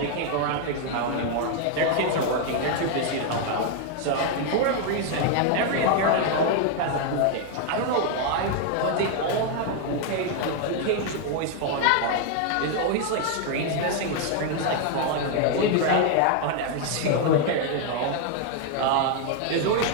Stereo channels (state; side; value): different; both; correlation 0.00